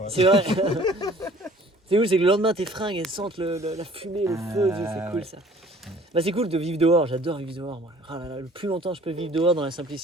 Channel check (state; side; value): normal; both; correlation 0.53